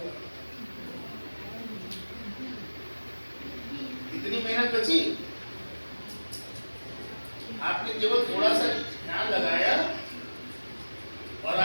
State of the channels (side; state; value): both; inverted; correlation -1.00